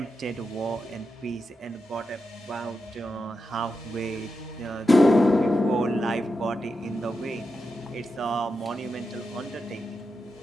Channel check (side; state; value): both; normal; correlation 0.88